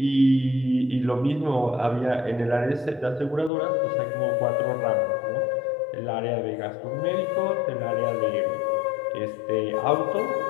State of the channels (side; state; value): right; drops out; at 3.5 s